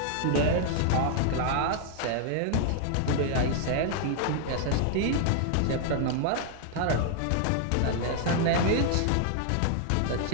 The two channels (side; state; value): both; different; correlation 0.00